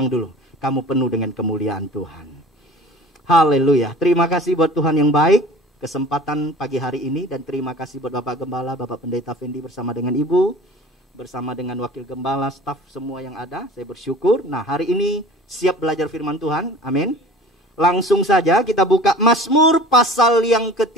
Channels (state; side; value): normal; both; correlation 0.43